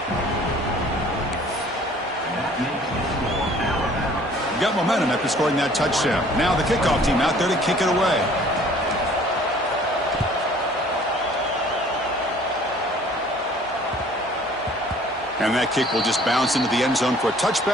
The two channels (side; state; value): both; normal; correlation 0.53